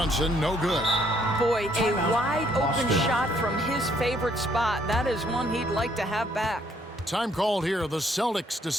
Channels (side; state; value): both; normal; correlation 0.67